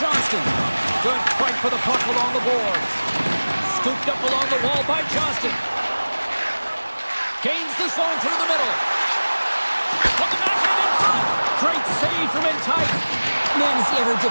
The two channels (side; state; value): both; inverted; correlation -1.00